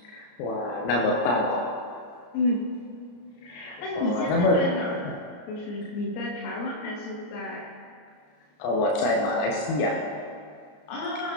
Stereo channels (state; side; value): late; right; 34 ms